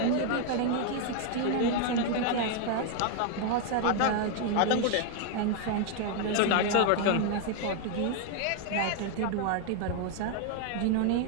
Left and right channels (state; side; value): different; both; correlation 0.01